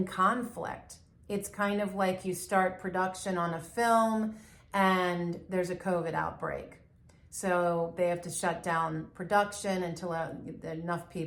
conflict. It's kind of like you start production on a film and there's a COVID outbreak. So they have to shut down production until enough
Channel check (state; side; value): identical; both; correlation 1.00